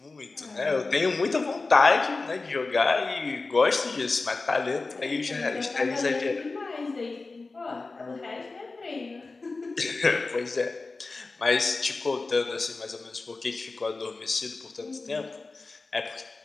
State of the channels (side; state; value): right; quieter; 3.7 dB